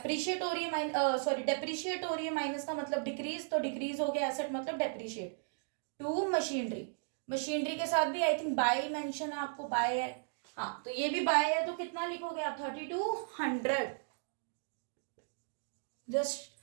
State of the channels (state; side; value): silent; left; digital silence